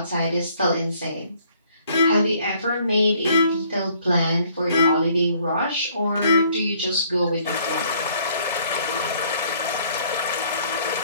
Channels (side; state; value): both; inverted; correlation -0.62